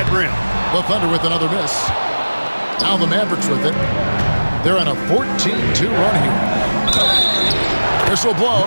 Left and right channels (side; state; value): both; inverted; correlation -1.00